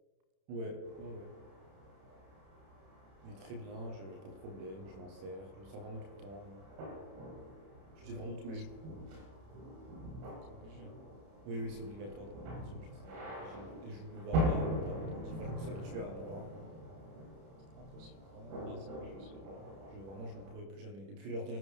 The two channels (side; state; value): left; late; 31 ms